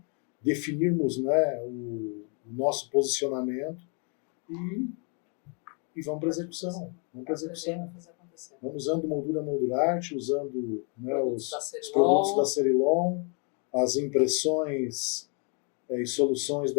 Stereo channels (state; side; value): quieter; right; 38.0 dB